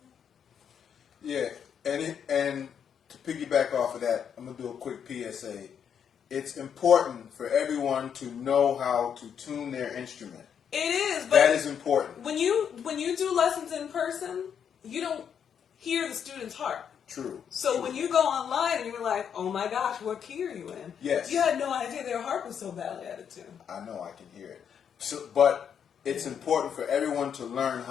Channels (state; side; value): quieter; right; 7.9 dB